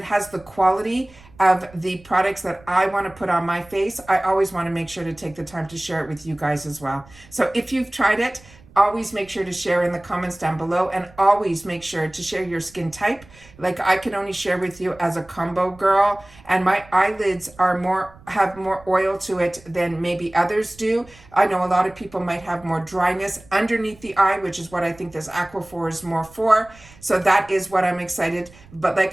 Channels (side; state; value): right; noise; rumble, 24 dB below the sound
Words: has the quality of the products that I want to put on my face, I always want to make sure to take the time to share it with you guys as well. So if you've tried it, always make sure to share in the comments down below, and always make sure to share your skin type. Like, I can only share with you as a combo girl, and my eyelids have more oil to it than maybe others do. I know a lot of people might have more dryness underneath the eye, which is what I think this Aquaphor is more for. So that is what I'm excited. But